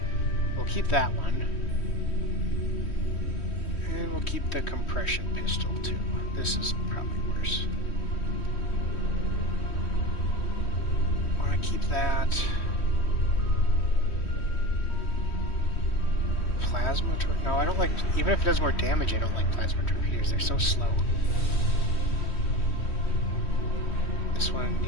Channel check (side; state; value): right; late; 3.1 ms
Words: We'll keep that one. And we'll keep the compression pistol too. This is probably worse. Want to keep that. Plasma torpedoes? No, I don't like... Even if it does more damage, I don't like plasma torpedoes. They're so slow. This one,